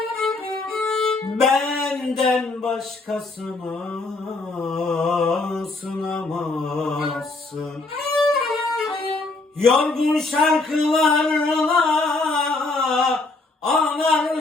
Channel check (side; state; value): right; quieter; 3.4 dB